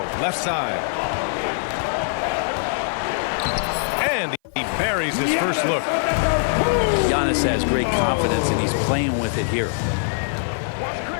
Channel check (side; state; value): right; silent; 57 dB below the other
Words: left side. And he buries his first look. Giannis has great confidence, and he's playing with it here.